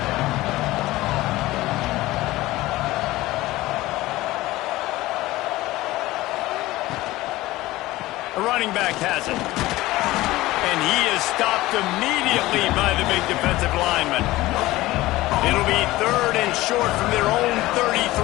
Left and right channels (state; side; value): quieter; right; 17.9 dB